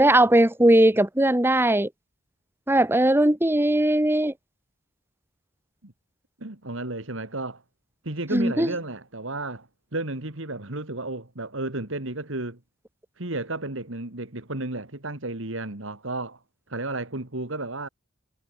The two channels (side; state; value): both; normal; correlation 0.75